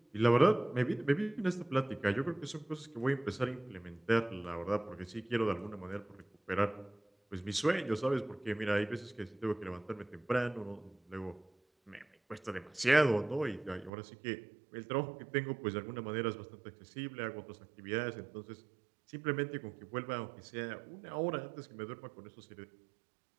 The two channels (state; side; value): drops out; left; at 13.9 s